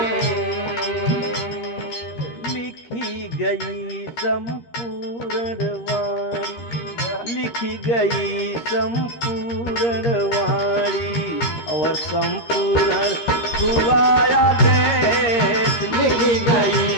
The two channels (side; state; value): right; late; 13 ms